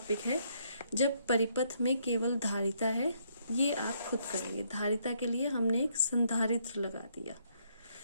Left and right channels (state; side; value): inverted; both; correlation -0.71